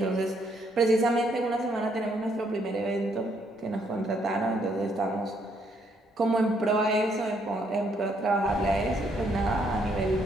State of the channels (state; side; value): normal; both; correlation 0.71